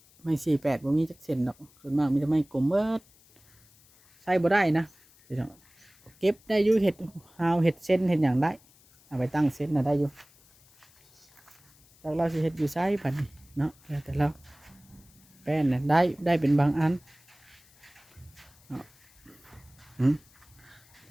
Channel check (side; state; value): left; noise; hiss, 29 dB below the sound